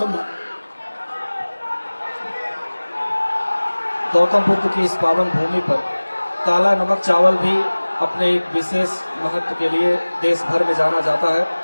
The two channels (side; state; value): both; inverted; correlation -1.00